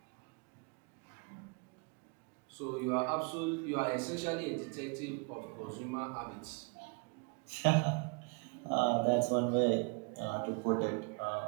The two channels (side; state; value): left; quieter; 33.0 dB